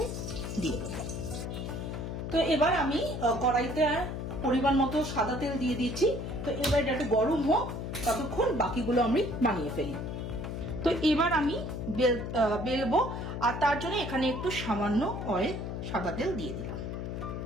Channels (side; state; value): left; noise; hum, 5 dB below the sound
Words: দিয়ে দেব। তো এবার আমি কড়াইতে পরিমাণ মতো সাদা তেল দিয়ে দিচ্ছি। তো এবার এটা একটু গরম হোক, ততক্ষণ বাকিগুলো আমি বানিয়ে ফেলি। তো এবার আমি বেলবো, আর তার জন্য এখানে একটু সামান্য অয়েল সাদা তেল দিয়ে দিলাম,